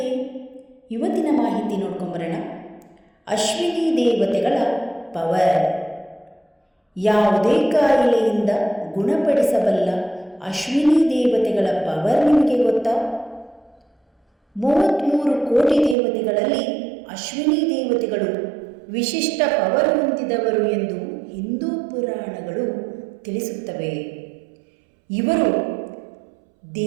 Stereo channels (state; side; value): drops out; left; at 16.0 s